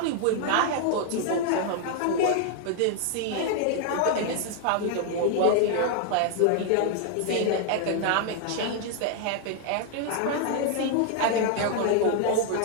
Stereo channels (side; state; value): both; different; correlation 0.00